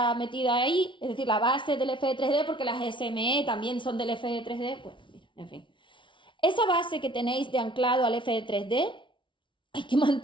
metida ahí, es decir, la base del FE3D, porque las SME también son del FE3D, bueno, mira, en fin. Esa base que tenéis de anclado al FE3D, hay que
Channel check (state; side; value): late; right; 0.24 ms